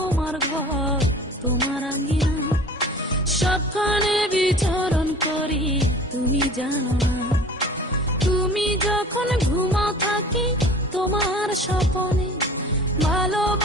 ঘর, তোমার আঙ্গিনা, সবখানে বিচরণ করি তুমি জানো না। তুমি যখন ঘুমাও থাকি তোমার স্বপনে,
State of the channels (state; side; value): normal; both; correlation 0.44